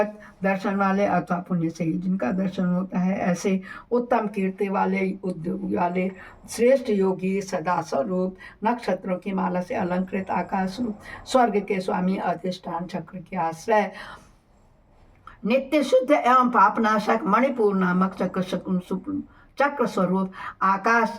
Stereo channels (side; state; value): both; identical; correlation 1.00